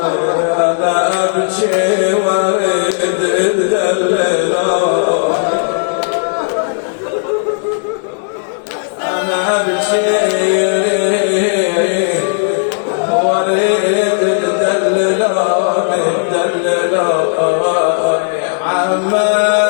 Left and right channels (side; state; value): right; silent; digital silence